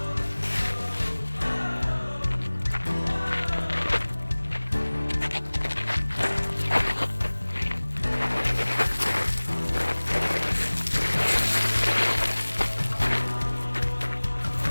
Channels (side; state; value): both; inverted; correlation -1.00